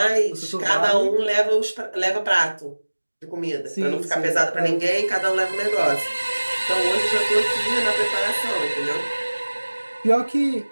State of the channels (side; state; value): both; inverted; correlation -1.00